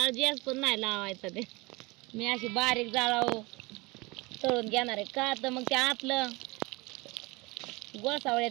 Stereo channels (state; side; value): quieter; left; 24.4 dB